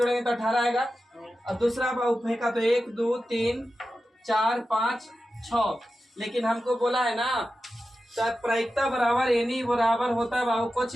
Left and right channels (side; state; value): both; normal; correlation 0.92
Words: तो 18 आएगा। और दूसरा बाबू फेंका तो 1 2 3 4 5 6। लेकिन हमको बोला है ना तो प्रायिकता बराबर एनी बराबर होता है बाबू